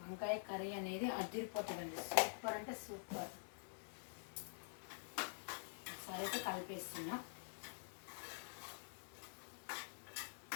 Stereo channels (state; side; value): silent; right; digital silence